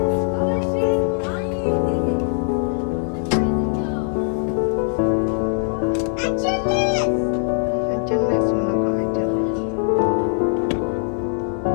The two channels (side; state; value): right; silent; digital silence